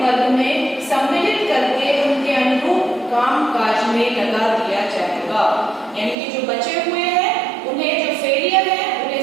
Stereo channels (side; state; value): left; drops out; at 6.2 s